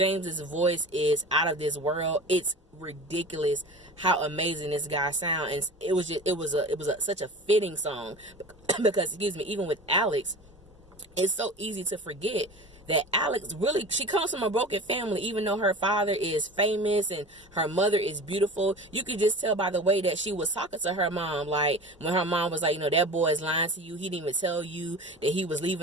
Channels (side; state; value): both; normal; correlation 0.35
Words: voice is out of this world. It's ridiculous how amazing this guy sounds. And it was such a fitting song because, even with Alex, it's so easy to forget that Alex really, she comes from a broken family. Even though her father is famous and her mother is beautiful, you could just tell by the way that she was talking to her mom. Like when her mom was like, that boy is lying to you. He didn't even tell you that he was